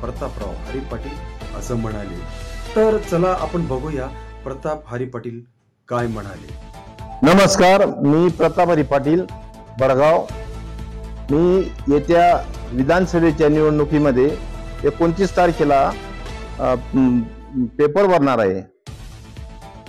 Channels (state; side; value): identical; both; correlation 1.00